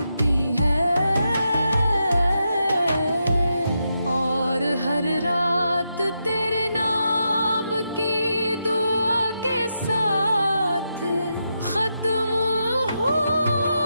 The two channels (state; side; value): inverted; both; correlation -0.85